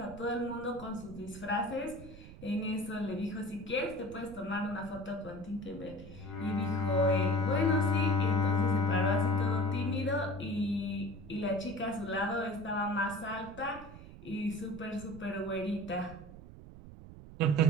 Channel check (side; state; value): right; noise; rumble, 15 dB below the sound